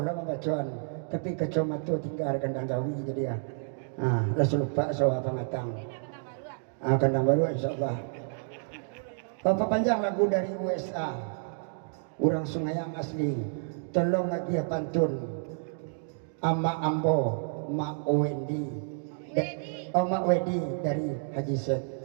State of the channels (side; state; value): left; silent; digital silence